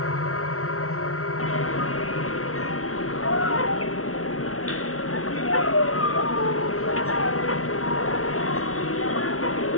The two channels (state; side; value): late; right; 0.63 ms